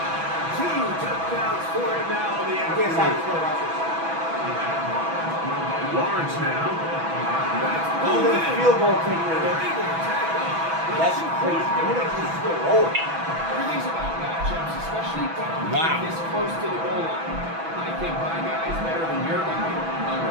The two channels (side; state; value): left; late; 6.1 ms